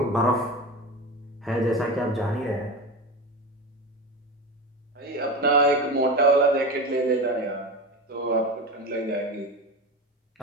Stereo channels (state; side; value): normal; both; correlation 0.25